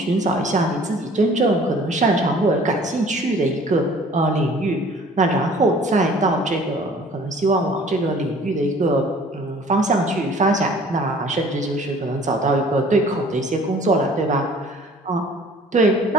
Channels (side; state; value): both; normal; correlation 0.51